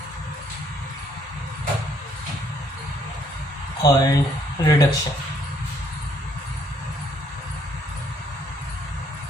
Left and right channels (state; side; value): normal; both; correlation 0.67